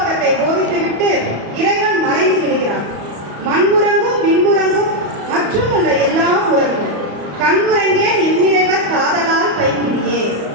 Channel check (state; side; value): late; left; 34 ms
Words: போதித்துவிட்டு இறைவன் மறைந்து விடுகிறார். மண்முறங்கும் விண்முறங்கும் மற்றும் உள்ள எல்லாம் உறங்கும், கண்முறங்கே இவ்விறைவர் காதலால் பைங்கிடியே